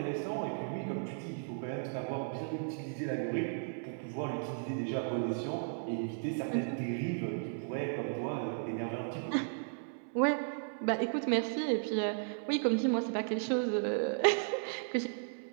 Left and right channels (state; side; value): silent; left; digital silence